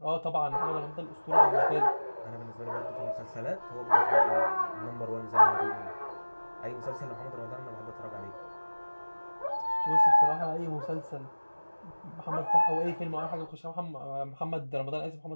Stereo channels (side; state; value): both; inverted; correlation -1.00